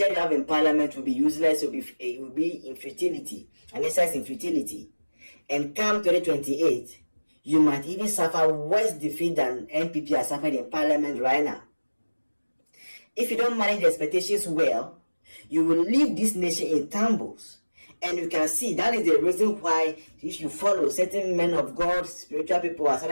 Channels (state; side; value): inverted; both; correlation -1.00